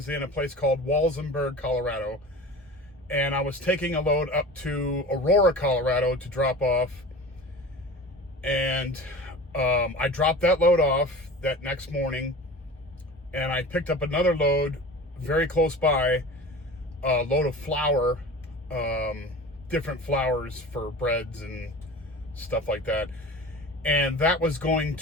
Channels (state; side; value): normal; both; correlation 0.36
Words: in a place called Walsenburg, Colorado, and I was taking a load up to Aurora, Colorado to drop off. And I dropped that load off that next morning, and I picked up another load very close by, a load of flour, different flours for breads and stuff like that. And that was going